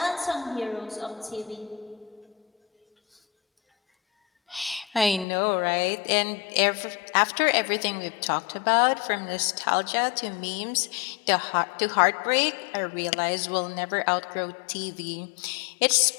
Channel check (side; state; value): right; drops out; at 5.2 s